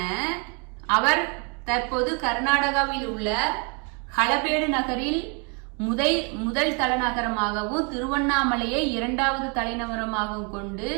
அவர் தற்போது கர்நாடகாவில் உள்ள ஹளபேடு நகரில் முதல் தலைநகரமாகவும் திருவண்ணாமலையை இரண்டாவது தலைநகரமாகவும் கொண்டு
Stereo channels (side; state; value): left; quieter; 35.2 dB